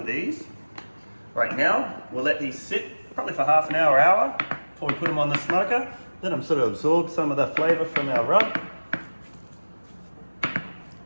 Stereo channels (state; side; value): inverted; both; correlation -1.00